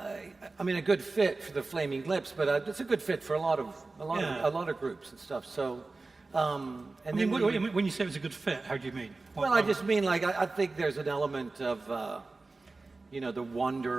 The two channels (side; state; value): left; quieter; 3.5 dB